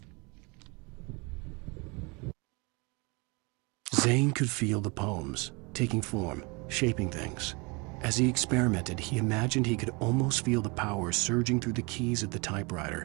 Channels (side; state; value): left; quieter; 28.6 dB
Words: Zane could feel the poems, taking form, shaping things. As he experimented, he imagined he could almost feel the power surging through the keys of the